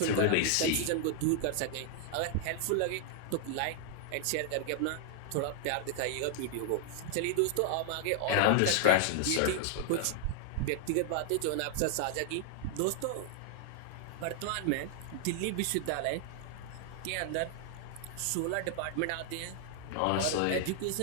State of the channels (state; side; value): different; both; correlation 0.00